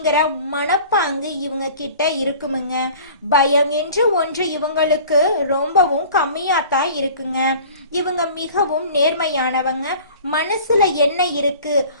மனப்பாங்கு இவங்க கிட்ட இருக்குமுங்க. பயம் என்று ஒன்று இவங்களுக்கு ரொம்பவும் கம்மியாத்தான் இருக்குங்க. இவங்க மிகவும் நேர்மையானவங்க. மனசுல என்ன இருக்கு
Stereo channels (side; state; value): both; inverted; correlation -0.45